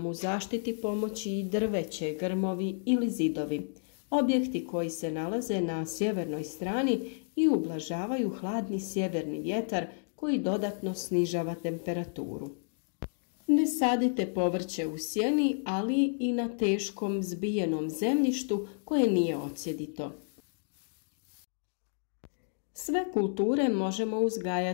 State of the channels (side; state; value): right; silent; digital silence